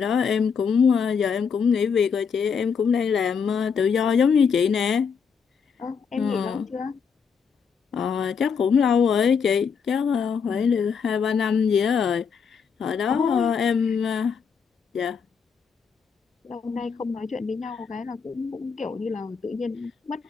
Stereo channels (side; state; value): right; quieter; 6.3 dB